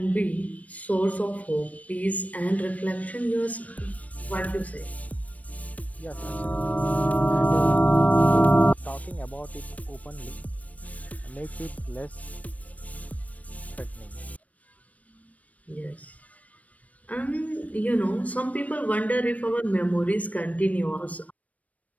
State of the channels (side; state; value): right; late; 0.069 ms